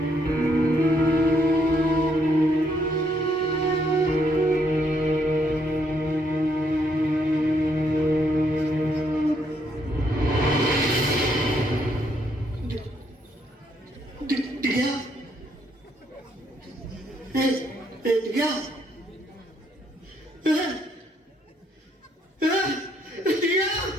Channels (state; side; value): normal; both; correlation 0.72